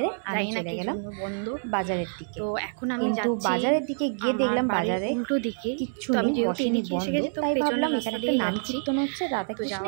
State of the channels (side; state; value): left; silent; 60 dB below the other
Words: আমি চলে গেলাম বন্ধু বাজারের দিকে। তো এখন আমি কিন্তু বাজারের দিকে গিয়ে দেখলাম বাজারে উল্টো দিকে কিচ্ছু নেই, বসেনি, বন্ধ। তাই ভাবলাম এখানে একটা নাম কীর্তন হচ্ছে, রাধা কৃষ্ণ,